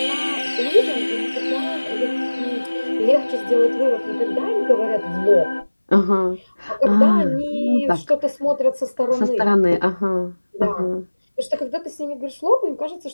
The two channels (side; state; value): both; inverted; correlation -1.00